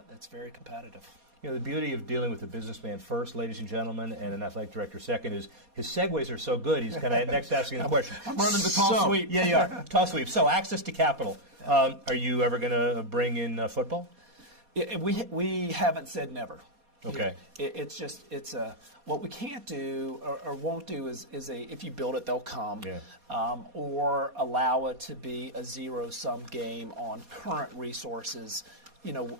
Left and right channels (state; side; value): late; left; 4.2 ms